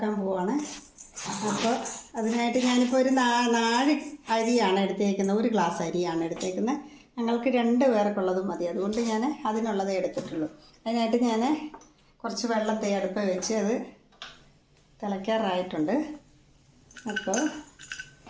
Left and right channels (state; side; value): identical; both; correlation 1.00